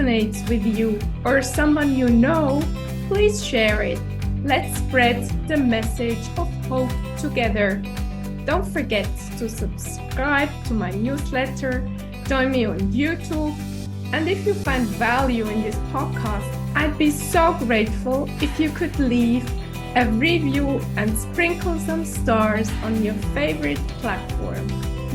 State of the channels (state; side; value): identical; both; correlation 1.00